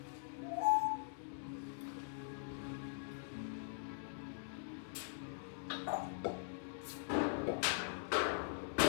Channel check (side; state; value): right; silent; digital silence